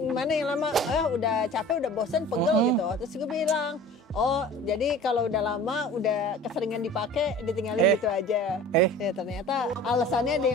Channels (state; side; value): normal; both; correlation 0.42